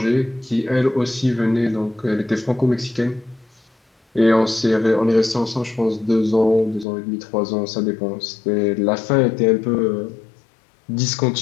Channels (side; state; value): right; drops out; at 6.9 s